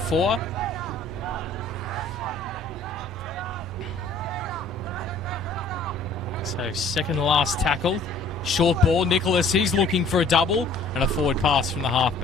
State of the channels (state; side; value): quieter; right; 3.0 dB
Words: So second to last tackle. Short ball, Nicholas, he's looking for a double, and a forward pass from the